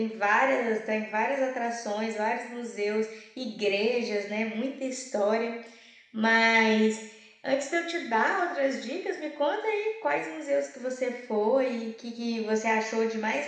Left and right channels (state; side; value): identical; both; correlation 1.00